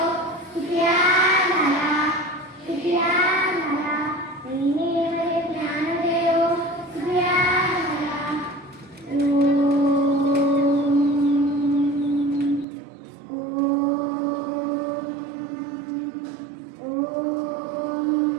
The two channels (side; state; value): left; drops out; at 12.7 s